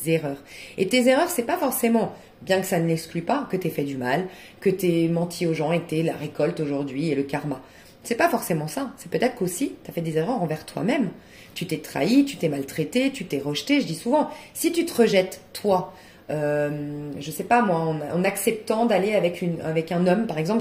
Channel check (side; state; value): both; identical; correlation 1.00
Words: erreurs. Et tes erreurs, c'est pas forcément, bien que ça ne l'exclue pas, que tu aies fait du mal, que tu aies menti aux gens et que tu aies la récolte aujourd'hui et le karma. C'est pas forcément ça. C'est peut-être qu'aussi, tu as fait des erreurs envers toi-même. Tu t'es trahi, tu t'es maltraité, tu t'es rejeté. Je dis souvent, si tu te rejettes, toi, je sais pas moi, en acceptant d'aller avec un homme, par